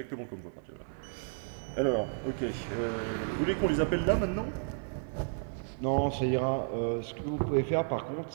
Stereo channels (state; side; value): silent; left; digital silence